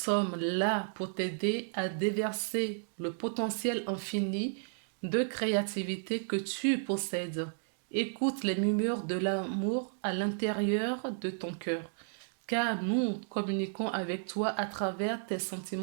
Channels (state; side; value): silent; left; digital silence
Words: là pour t'aider à déverser le potentiel infini de créativité que tu possèdes. Écoute les murmures de l'amour à l'intérieur de ton cœur, car nous communiquons avec toi à travers tes